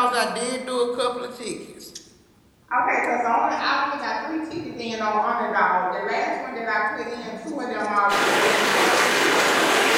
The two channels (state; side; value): identical; both; correlation 1.00